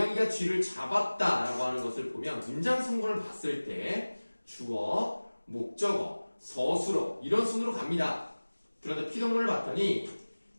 쥐를 잡았다라고 하는 것을 보면 문장 성분을 봤을 때 주어, 목적어, 서술어 이런 순으로 갑니다. 그런데 피동문을 봤더니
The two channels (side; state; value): both; inverted; correlation -1.00